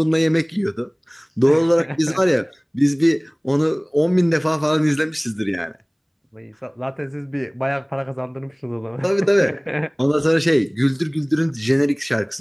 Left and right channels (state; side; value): identical; both; correlation 1.00